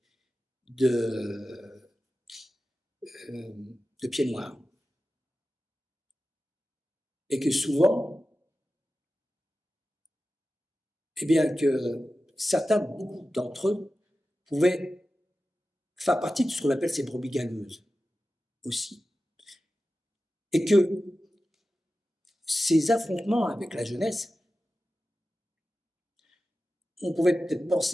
De pieds noirs. Et que souvent, eh bien que certains, beaucoup d'entre eux, pouvaient faire partie de ce qu'on appelle ces brebis galeuses aussi. Et que ces affrontements avec la jeunesse, on pouvait peut-être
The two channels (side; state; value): both; normal; correlation 0.94